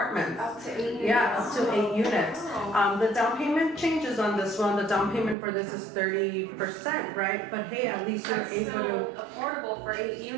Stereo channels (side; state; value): left; drops out; at 5.4 s